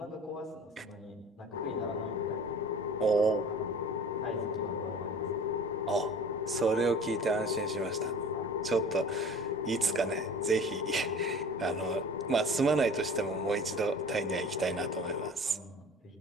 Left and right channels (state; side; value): normal; both; correlation 0.43